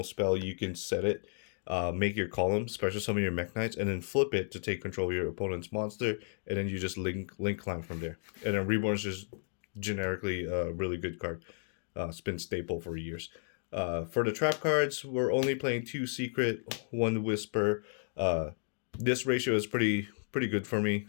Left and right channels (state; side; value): silent; right; digital silence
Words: spell. You can set it, make your column, special summon your Mekk-Knights, and then flip it to take control of your opponent's monster, and then you just link climb from there. And then Reborn is just generically a really good card. It's been staple for years. For the trap cards, we're only playing 2 secret, 1 whisper. This ratio is pretty good for me.